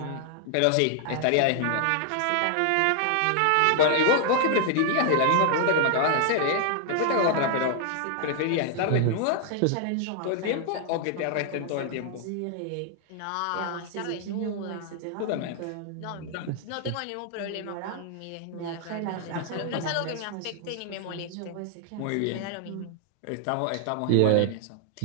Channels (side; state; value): both; different; correlation 0.00